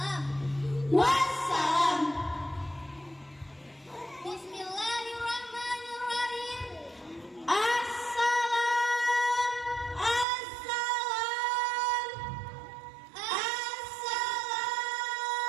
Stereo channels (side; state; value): left; drops out; at 10.2 s